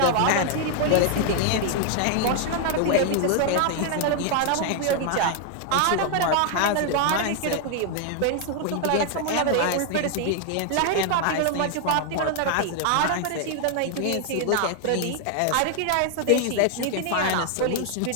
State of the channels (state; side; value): different; both; correlation 0.00